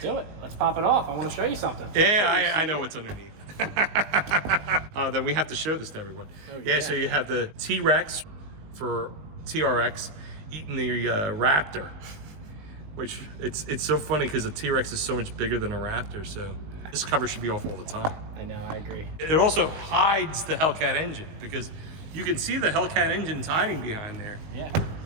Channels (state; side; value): late; left; 19 ms